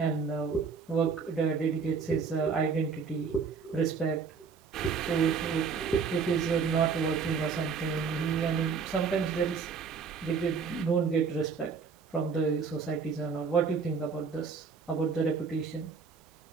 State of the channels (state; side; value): quieter; left; 5.6 dB